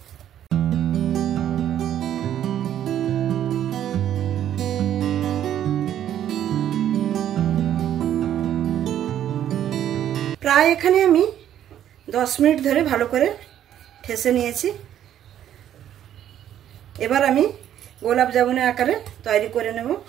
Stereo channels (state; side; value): quieter; left; 10.8 dB